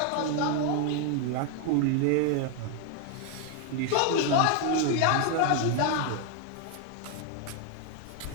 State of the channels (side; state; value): both; different; correlation 0.00